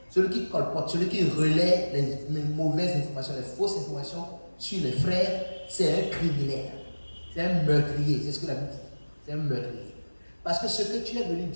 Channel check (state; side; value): inverted; both; correlation -1.00